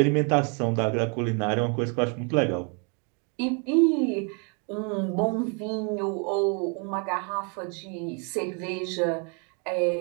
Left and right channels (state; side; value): quieter; left; 36.5 dB